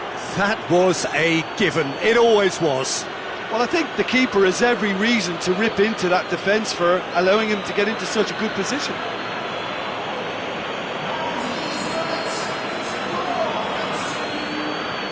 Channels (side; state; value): both; identical; correlation 1.00